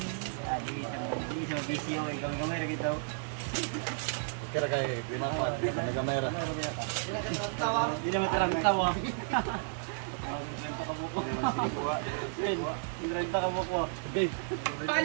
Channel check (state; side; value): silent; left; digital silence